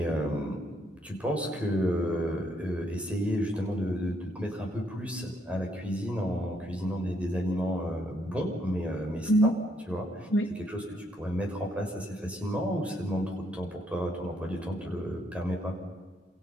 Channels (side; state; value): both; normal; correlation 0.72